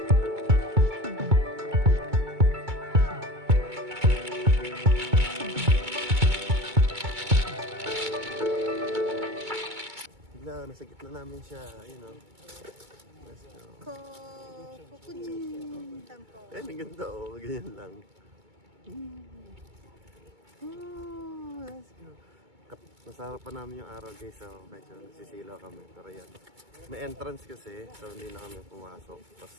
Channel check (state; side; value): late; left; 2.2 ms